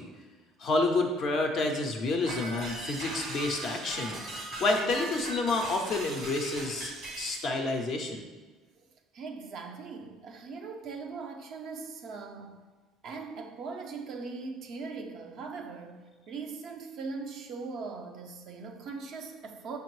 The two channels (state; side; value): normal; both; correlation 0.63